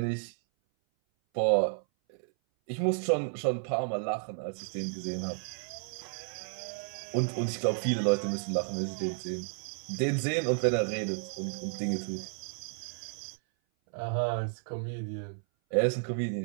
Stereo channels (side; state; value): left; silent; 56 dB below the other